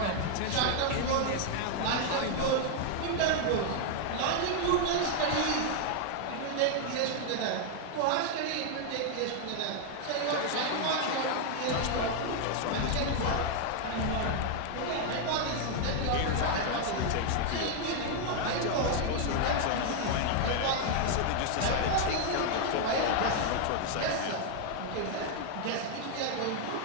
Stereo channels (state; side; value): different; both; correlation 0.00